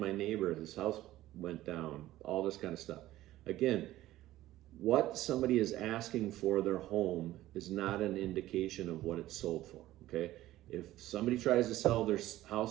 neighbor, his house went down, all this kind of stuff. Again, what somebody is asking for their home is not an indication of what it's sold for, okay? If somebody tries to sell their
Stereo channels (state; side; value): quieter; left; 15.3 dB